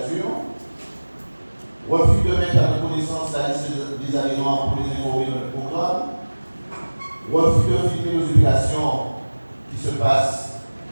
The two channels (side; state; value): both; inverted; correlation -1.00